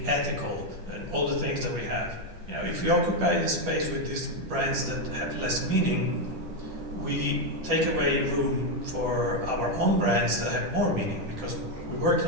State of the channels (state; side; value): late; left; 10 ms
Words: ethical, and all the things that we have. If we occupy the space with these brands that have less meaning, we take away room for our own brands that have more meaning, because we worked